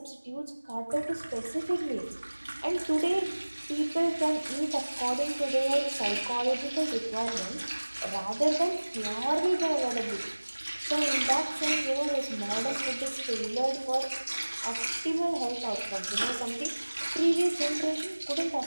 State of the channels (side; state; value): both; inverted; correlation -1.00